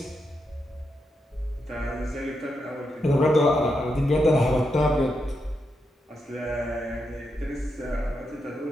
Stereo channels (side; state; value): both; normal; correlation 0.84